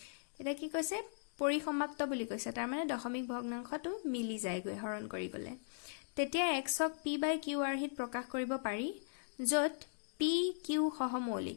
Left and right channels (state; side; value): silent; right; digital silence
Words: এটা কি কৈছে পৰিসমাপ্ত বুলি কৈছে, তাৰ মানে দশমিক ভগ্নাংশটো মিলি যায়গৈ হৰণ কৰি গলে। তেতিয়া x ক p/q হিত প্ৰকাশ কৰিব পাৰি, য'ত p q